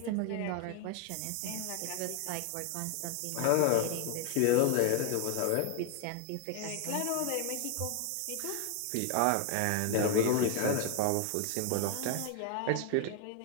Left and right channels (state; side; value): different; both; correlation 0.00